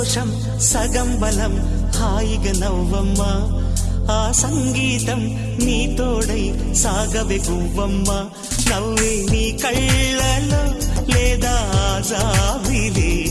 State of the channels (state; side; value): identical; both; correlation 1.00